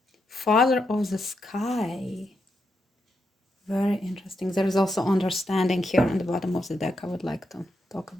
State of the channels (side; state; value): both; normal; correlation 0.83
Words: Father of the sky. Very interesting. There is also understanding here on the bottom of the deck. I would like to talk